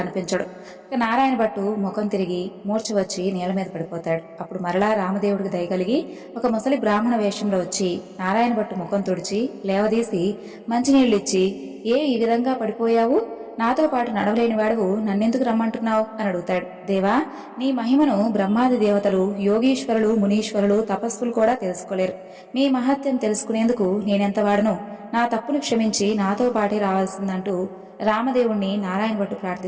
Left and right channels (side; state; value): both; identical; correlation 1.00